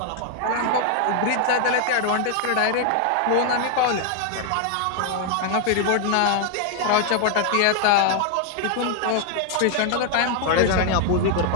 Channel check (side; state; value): both; different; correlation 0.00